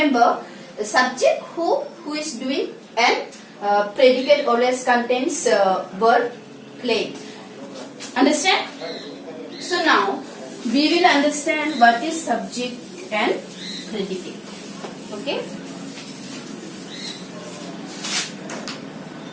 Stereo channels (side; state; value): both; identical; correlation 1.00